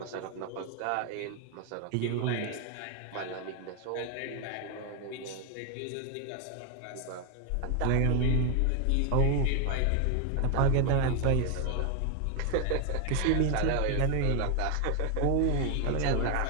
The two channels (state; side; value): different; both; correlation 0.01